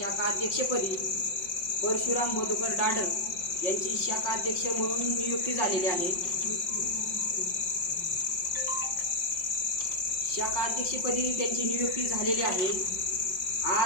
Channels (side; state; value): right; late; 5.5 ms